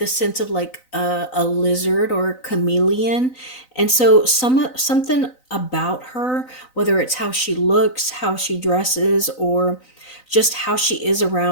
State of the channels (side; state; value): right; late; 3.9 ms